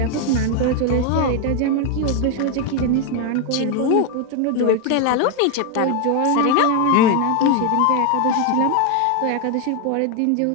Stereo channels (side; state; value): both; different; correlation 0.01